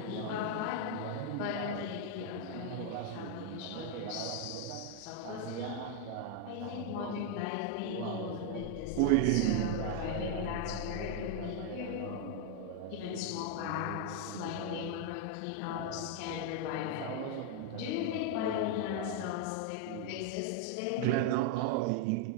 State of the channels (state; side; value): different; both; correlation 0.00